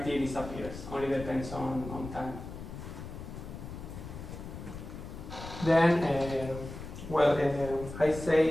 disappears, only depends on time. Then, I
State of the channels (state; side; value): noise; left; rumble, 10 dB below the sound